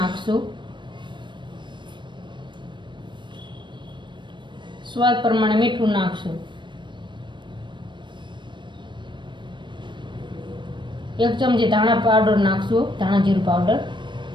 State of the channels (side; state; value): left; late; 0.22 ms